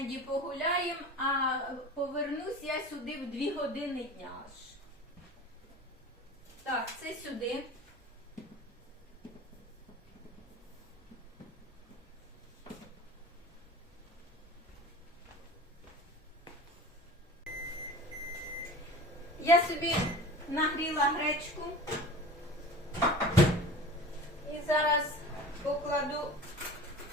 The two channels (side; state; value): both; normal; correlation 0.37